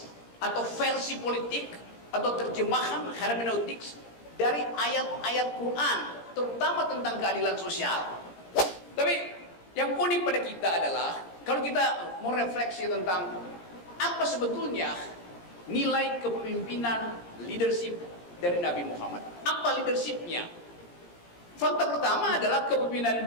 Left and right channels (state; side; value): late; right; 17 ms